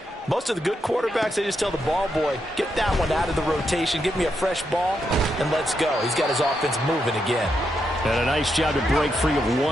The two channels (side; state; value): both; normal; correlation 0.82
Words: Most of the good quarterbacks, they just tell the ball boy, get that one out of the rotation, give me a fresh ball, and let's go. He's got his offense moving again. And a nice job to break free of